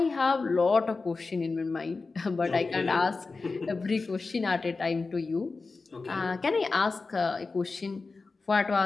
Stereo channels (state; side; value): quieter; right; 4.0 dB